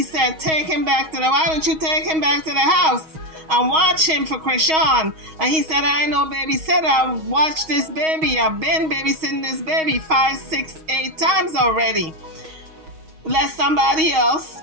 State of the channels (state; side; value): late; left; 6.3 ms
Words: said, take him back to why don't you take him back to the house and watch him for Chrisean? And he said, I ain't no babysitter. I watched this baby. I've been babysitting this baby 5, 6, 8 times already. Let somebody else